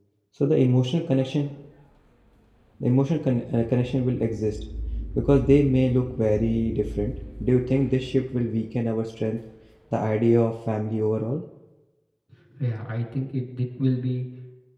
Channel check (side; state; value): both; identical; correlation 1.00